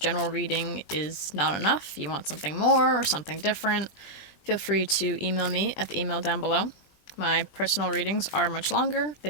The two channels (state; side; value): late; right; 20 ms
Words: reading is not enough, you want something more or something different, feel free to email me at the email down below. My personal readings are much longer.